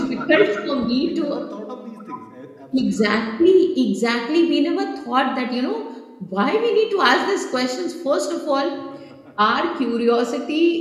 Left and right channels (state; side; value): identical; both; correlation 1.00